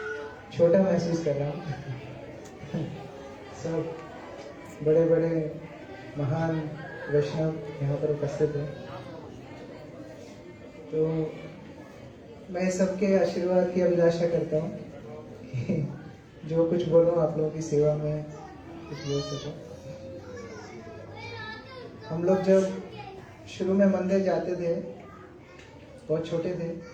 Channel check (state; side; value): identical; both; correlation 1.00